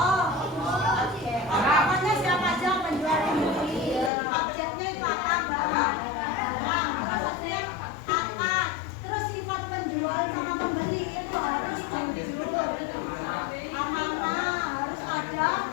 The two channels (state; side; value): drops out; right; at 4.1 s